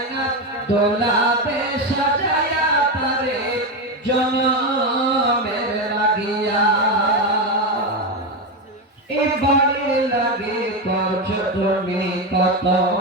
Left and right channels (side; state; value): both; normal; correlation 0.12